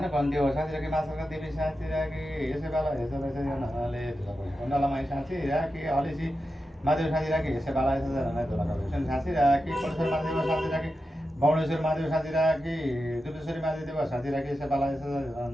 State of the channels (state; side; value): normal; both; correlation 0.90